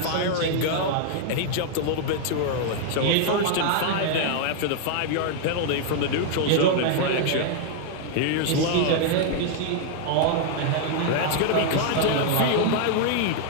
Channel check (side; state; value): both; different; correlation 0.00